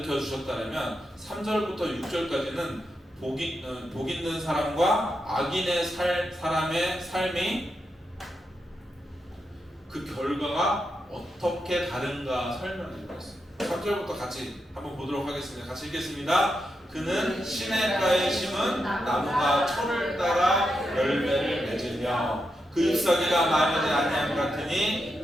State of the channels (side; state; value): both; normal; correlation 0.85